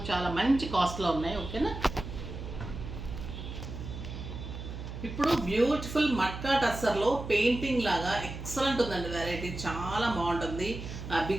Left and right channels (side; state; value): right; noise; hum, 9 dB below the sound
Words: చాలా మంచి కాస్ట్లో ఉన్నాయి. ఓకేనా. ఇప్పుడు బ్యూటిఫుల్ మట్కా టస్సర్లో పెయింటింగ్ లాగా ఎక్సలెంట్ ఉందండి వెరైటీ, చాలా బాగుంటుంది.